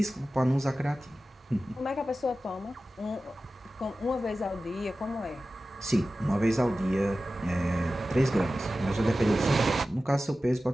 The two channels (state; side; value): normal; both; correlation 0.95